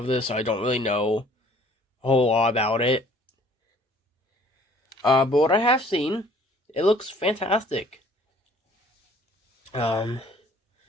this, so I don't really know a whole lot about it. But what I have seen, it looks fantastic. This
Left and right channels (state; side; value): normal; both; correlation 0.55